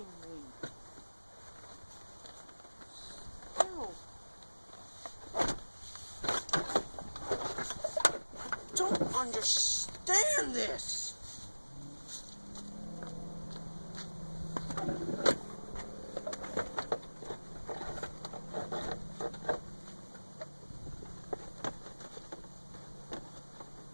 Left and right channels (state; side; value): inverted; both; correlation -1.00